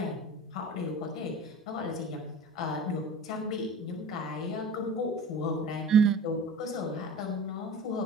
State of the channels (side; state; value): both; normal; correlation 0.38